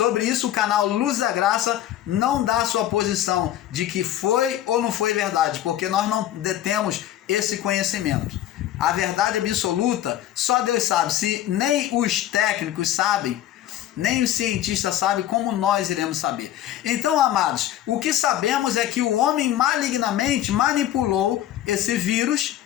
isso o canal Luz da Graça não dá sua posição de que foi ou não foi verdade, porque nós não detemos esse conhecimento. A verdade absoluta, só Deus sabe. Se nem os técnicos sabem, nem os cientistas sabem, como nós iremos saber? Então, amados, o que sabemos é que o homem malignamente manipulou esse vírus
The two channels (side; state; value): right; quieter; 12.5 dB